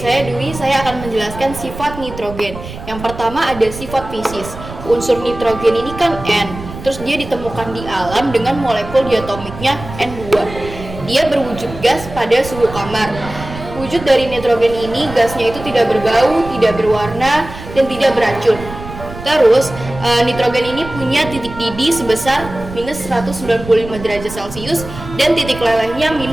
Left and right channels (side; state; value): right; noise; rumble, 12 dB below the sound